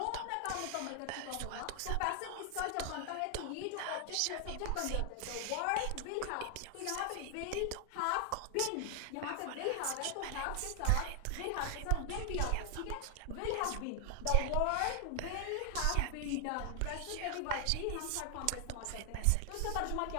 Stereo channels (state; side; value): different; both; correlation 0.00